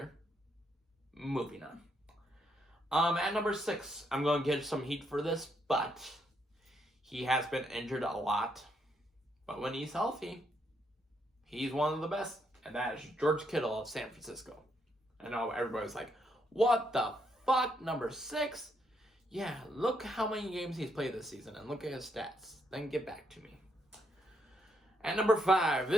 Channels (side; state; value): both; normal; correlation 0.76